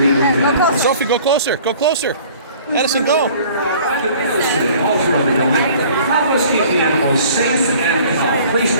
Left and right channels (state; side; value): inverted; both; correlation -0.50